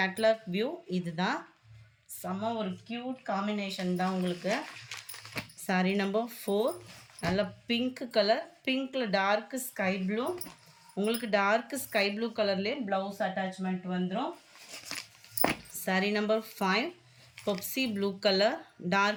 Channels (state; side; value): identical; both; correlation 1.00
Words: வியூ இது தான். செம்ம ஒரு க்யூட் காம்பினேஷன் தான் உங்களுக்கு. சாரி நம்பர் 4 நல்ல பிங்க் கலர், பிங்க்கில் டார்க்கு ஸ்கை ப்ளூ, உங்களுக்கு டார்க்கு ஸ்கை ப்ளூ கலர்லேயே ப்ளவுஸ் அட்டாச்மெண்ட் வந்துடும். Sari number 5 Pepsi blue colour,